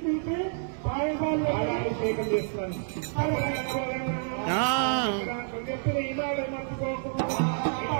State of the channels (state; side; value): silent; left; 59 dB below the other